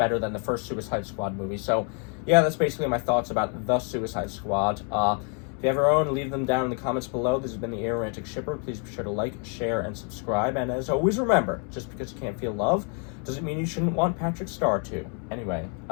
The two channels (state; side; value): quieter; right; 39.9 dB